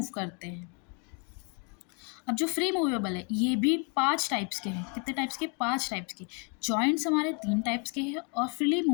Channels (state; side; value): quieter; right; 35.6 dB